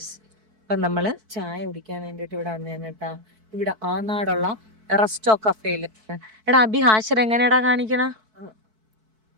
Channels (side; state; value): left; late; 4.6 ms